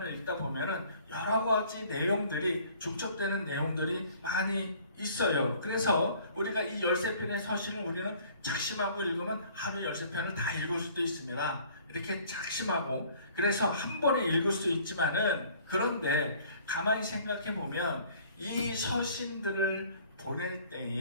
읽다 보면은 여러 가지 내용들이 중첩되는 내용들이 많이 있어요. 그래서 우리가 이 13편의 서신을 우리는 작심하고 읽으면 하루 13편을 다 읽을 수도 있습니다. 이렇게 작심하고, 그래서 한 번에 읽을 수 있지만은, 그런데 가만히 생각해 보면 이 서신들을 보낼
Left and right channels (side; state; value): both; inverted; correlation -0.54